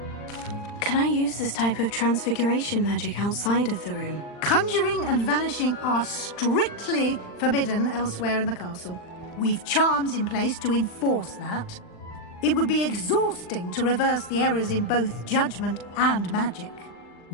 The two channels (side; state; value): right; late; 39 ms